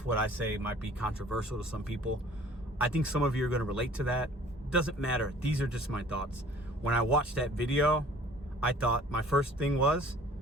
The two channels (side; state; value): both; normal; correlation 0.52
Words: what I say might be controversial to some people. I think some of you are going to relate to that. Doesn't matter. These are just my thoughts. When I watched that video, I thought my first thing was,